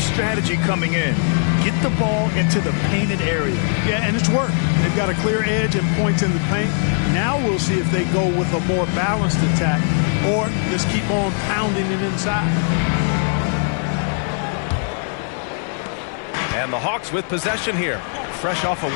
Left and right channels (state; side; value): silent; right; 61 dB below the other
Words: coming in. Get the ball into the painted area. Yeah, and it's worked. They've got a clear edge and points in the paint. Now we'll see if they go with a more balanced attack or just keep on pounding it inside. And the Hawks with possession here, fresh off a